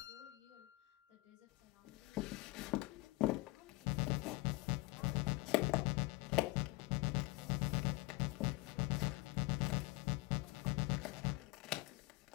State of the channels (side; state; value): right; quieter; 21.1 dB